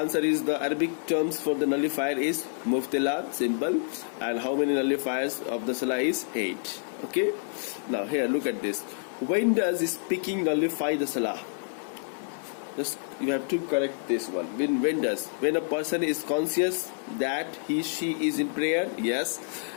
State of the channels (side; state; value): right; silent; digital silence